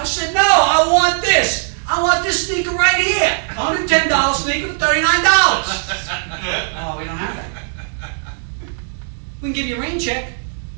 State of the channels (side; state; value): left; silent; 62 dB below the other